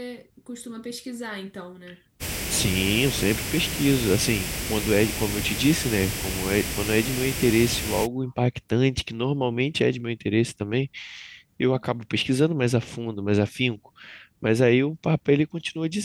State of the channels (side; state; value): both; identical; correlation 1.00